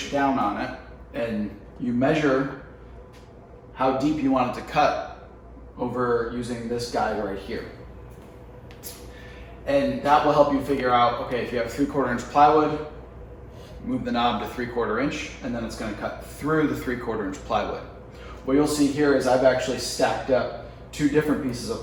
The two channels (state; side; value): identical; both; correlation 1.00